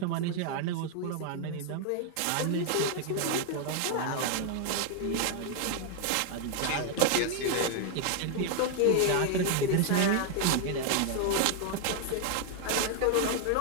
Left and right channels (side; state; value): both; different; correlation 0.00